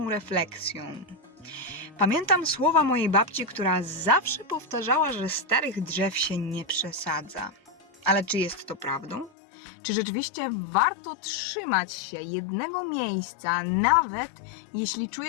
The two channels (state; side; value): drops out; right; at 9.3 s